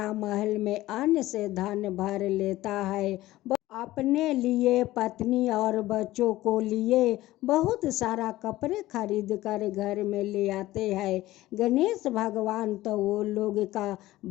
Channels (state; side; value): quieter; right; 16.6 dB